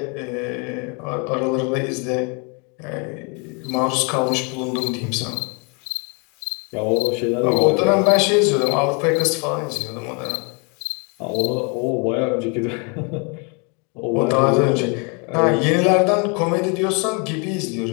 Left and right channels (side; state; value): right; quieter; 34.1 dB